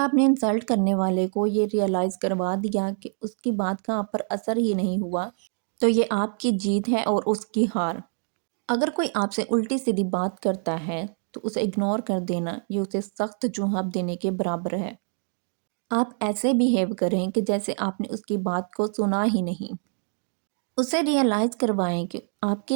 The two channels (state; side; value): silent; left; 59 dB below the other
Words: نے انسلٹ کرنے والے کو یہ ریئلائز کروا دیا کہ اس کی بات کا آپ پر اثر ہی نہیں ہوا تو یہ آپ کی جیت ہے اور اس کی ہار۔ اگر کوئی آپ سے الٹی سیدھی بات کرتا ہے تو اسے اگنور کر دینا یہ اسے سخت جواب دینے کے برابر ہے۔ آپ ایسے بیہیو کریں کہ جیسے آپ نے اس کی بات کو سنا ہی نہیں، اسے ریئلائز کروائیں کہ آپ